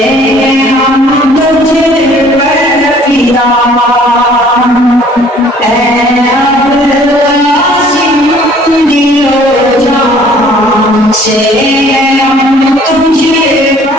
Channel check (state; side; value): normal; both; correlation 0.56